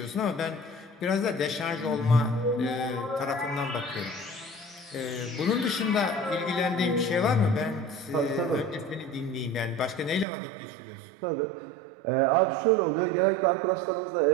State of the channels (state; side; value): drops out; left; at 10.2 s